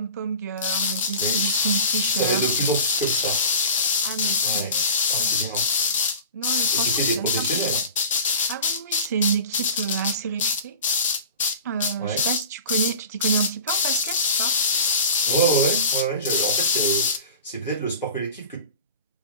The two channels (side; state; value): both; inverted; correlation -0.36